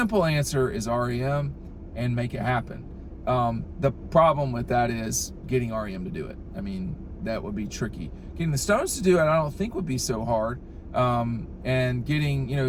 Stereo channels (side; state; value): both; identical; correlation 1.00